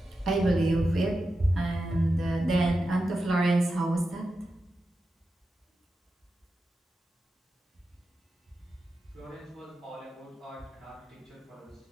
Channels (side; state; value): both; normal; correlation 0.90